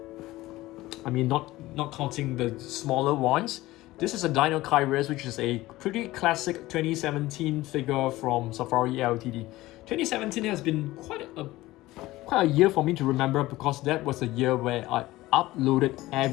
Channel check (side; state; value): right; quieter; 17.8 dB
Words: I mean, not counting the smaller ones. This is a Dinosaurs, which is a pretty classic 2017 figure from Safari Ltd. 2017 has been quite a year for me to remember, because that was a year where I uploaded